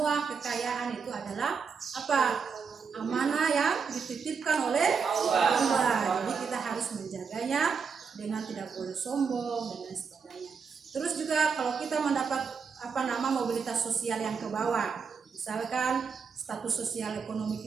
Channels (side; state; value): left; quieter; 5.8 dB